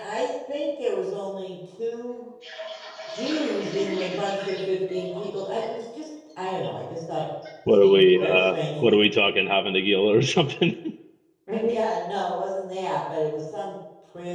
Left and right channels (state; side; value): identical; both; correlation 1.00